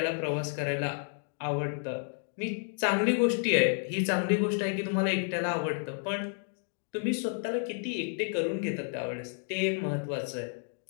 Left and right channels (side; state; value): right; silent; 57 dB below the other